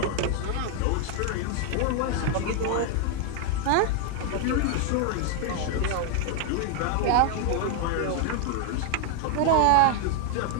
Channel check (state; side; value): different; both; correlation 0.01